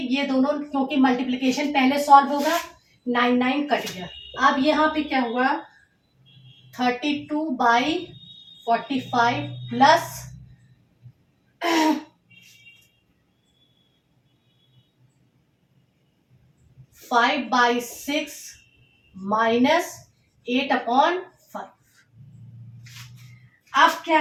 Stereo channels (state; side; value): identical; both; correlation 1.00